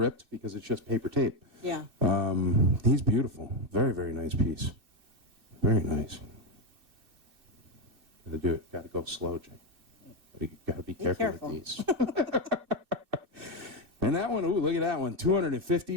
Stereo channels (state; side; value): late; left; 2.6 ms